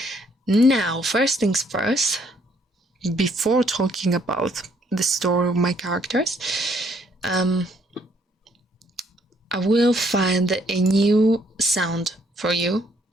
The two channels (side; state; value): both; normal; correlation 0.67